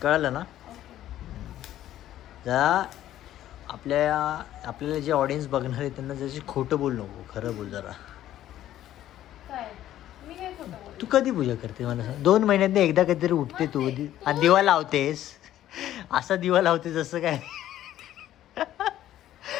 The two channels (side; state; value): right; quieter; 12.7 dB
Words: कळलं ना. जरा आपल्याला जे ऑडियन्स बघणार आहे त्यांना जशी खोटं बोल नको. खरं बोल जरा. तू कधी पूजा करते मला सांग. 2 महिन्यातनं एकदा कधीतरी उठते तू आणि दिवा लावतेस. असा दिवा लावते जसं काय